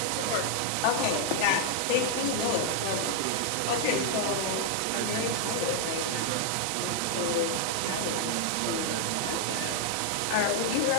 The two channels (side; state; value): both; different; correlation 0.00